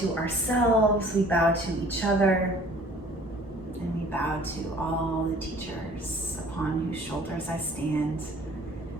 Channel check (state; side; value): normal; both; correlation 0.52